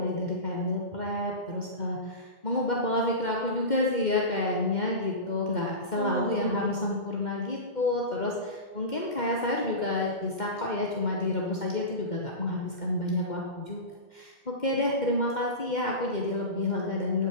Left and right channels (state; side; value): late; right; 2.1 ms